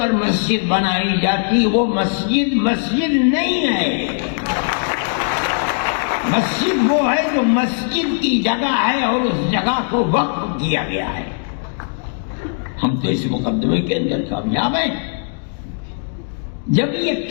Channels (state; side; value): silent; right; digital silence